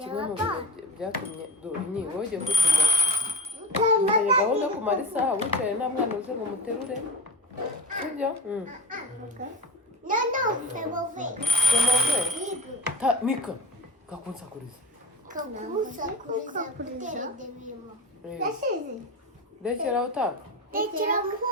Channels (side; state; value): both; normal; correlation 0.21